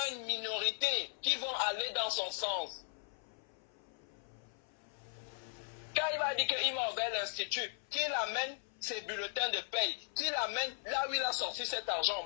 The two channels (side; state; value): right; silent; 53 dB below the other